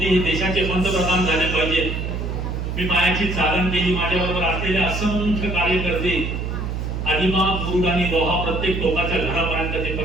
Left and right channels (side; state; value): right; noise; hum, 3 dB below the sound